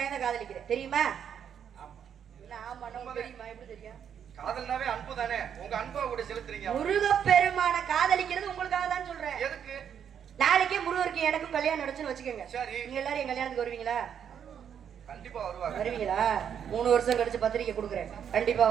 தான் காதலிக்கிறேன். தெரியுமா? ஆமா, தெரியுமா? எப்படி தெரியும்? காதல்னாவே அன்பு தானே. உங்க அன்பை கூட செலுத்துறீங்க. முருகப்பெருமான காதலிக்கிறது உங்களுக்காக தான் சொல்றேன். எதுக்கு? நாளைக்கே முருகருக்கு எனக்கும் கல்யாணம் நடச்சுன்னு வச்சுக்கோங்க. சரி, நீங்க எல்லாரும் என் கல்யாணத்துக்கு வருவீங்களா? கண்டிப்பா வருவாங்க. வருவீங்களா? 3 வருஷம் கழிச்சு பத்திரிக்கை கொடுக்குறேன். கண்டிப்பா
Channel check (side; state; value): left; quieter; 8.4 dB